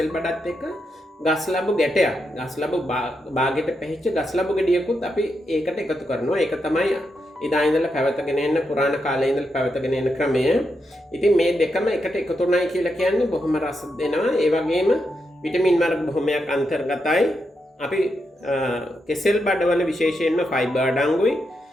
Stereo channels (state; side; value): normal; both; correlation 0.84